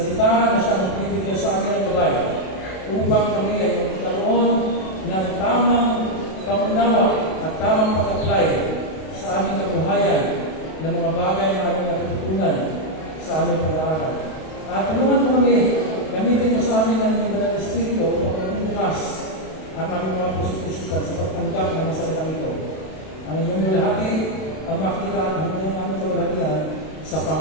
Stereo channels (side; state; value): right; late; 32 ms